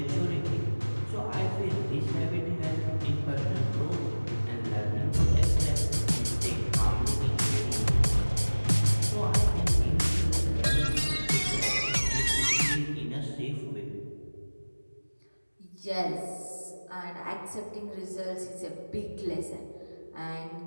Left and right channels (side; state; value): both; inverted; correlation -1.00